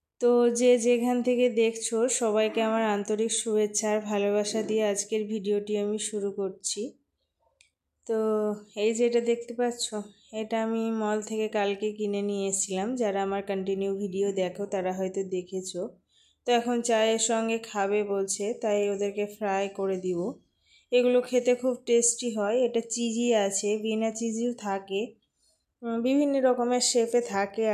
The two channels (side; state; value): both; identical; correlation 1.00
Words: তো যে যেখান থেকে দেখছো সবাইকে আমার আন্তরিক শুভেচ্ছা আর ভালোবাসা দিয়ে আজকের ভিডিওটি আমি শুরু করছি। তো এই যেটা দেখতে পাচ্ছ, এটা আমি মল থেকে কালকে কিনে নিয়ে এসেছিলাম। যারা আমার কন্টিনিউ ভিডিও দেখো তারা হয়তো দেখেছো। তো এখন চায়ের সঙ্গে খাবে বলছে, তাই ওদেরকে ফ্রাই করে দিব। এগুলো খেতে খুব টেস্টি হয়। এটা চিজি আছে, বিনা চিজিও থাকে, বিভিন্ন রকমের শেপে থাকে